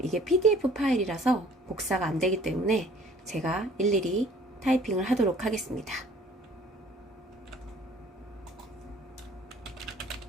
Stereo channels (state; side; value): normal; both; correlation 0.54